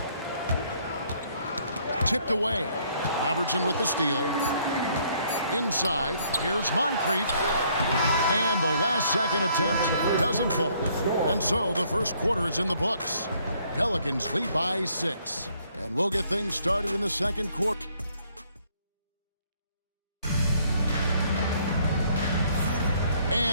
Tipped away. Robertson with the steal. Inside, here's Moncrief. And the last second attempt doesn't fall. And so the first quarter is in the books. Pelicans lead by 6. And we'll get things started in the second quarter.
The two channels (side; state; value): both; inverted; correlation -0.66